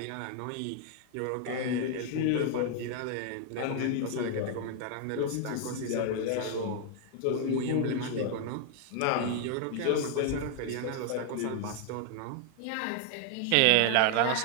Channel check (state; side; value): different; both; correlation 0.00